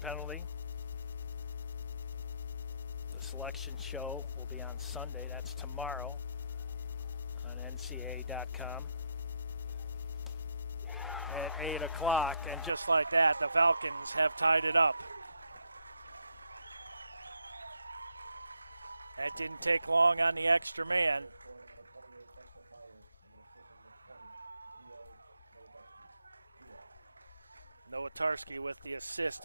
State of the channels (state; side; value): inverted; both; correlation -0.78